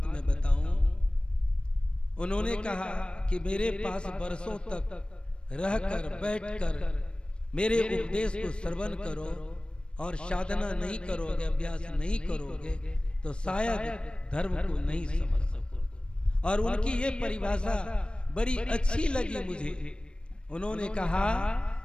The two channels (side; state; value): right; late; 0.056 ms